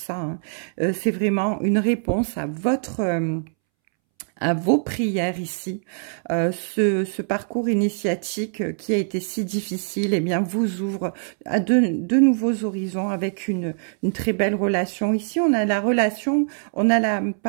Hein. C'est vraiment une réponse à votre à vos prières ici. Ce parcours initiatique qui a été si difficile, eh bien, vous ouvre à de nouveaux horizons avec une très belle relation. Ici, on a la relation, on a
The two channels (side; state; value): left; silent; 63 dB below the other